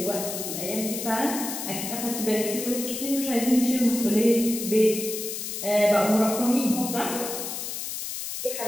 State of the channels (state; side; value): noise; left; hiss, 6 dB below the sound